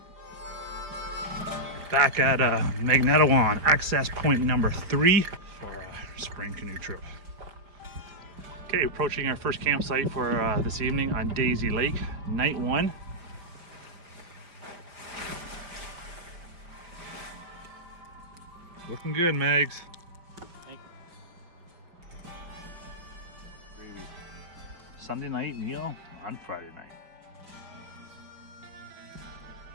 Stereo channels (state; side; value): late; left; 5.0 ms